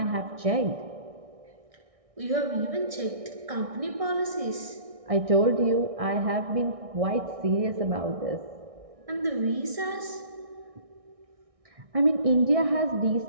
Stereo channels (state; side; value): late; left; 1.6 ms